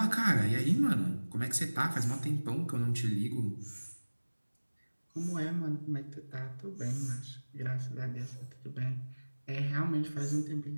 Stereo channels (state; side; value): inverted; both; correlation -1.00